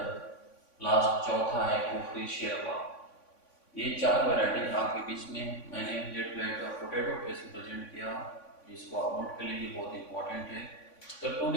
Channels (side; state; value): right; late; 3.5 ms